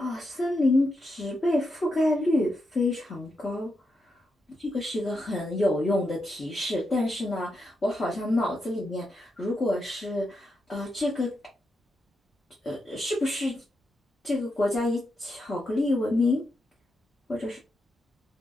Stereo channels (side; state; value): both; normal; correlation 0.84